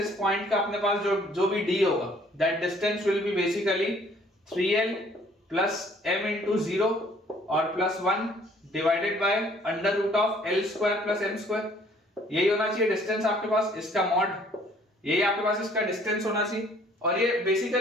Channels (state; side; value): normal; both; correlation 0.59